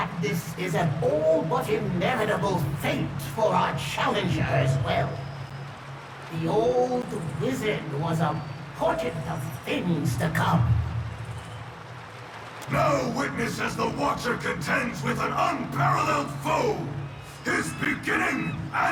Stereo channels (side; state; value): both; identical; correlation 1.00